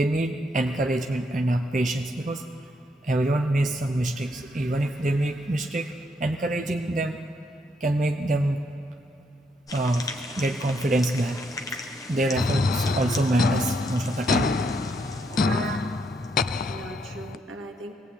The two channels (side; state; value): both; normal; correlation 0.75